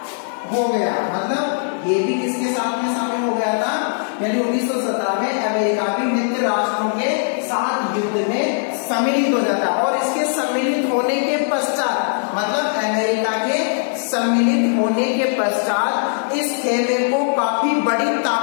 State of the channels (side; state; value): right; silent; digital silence